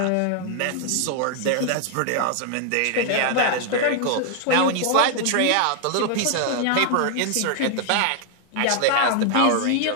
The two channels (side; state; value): both; different; correlation 0.00